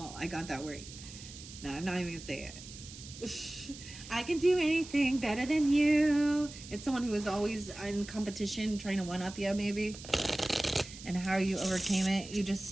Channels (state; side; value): noise; right; hiss, 15 dB below the sound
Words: I got that word. No, I'm not even gonna say it. I can do anything better than you. It's someone who is always in competition, trying to one up you, maybe. And how you overcame it. You just